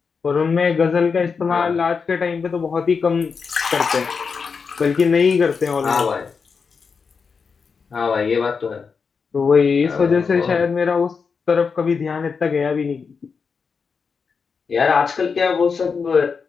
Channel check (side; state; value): right; quieter; 5.5 dB